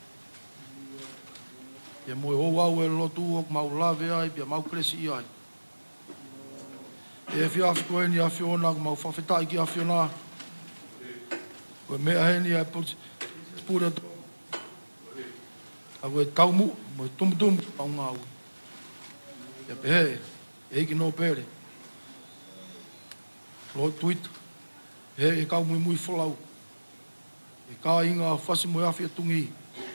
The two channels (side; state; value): both; inverted; correlation -1.00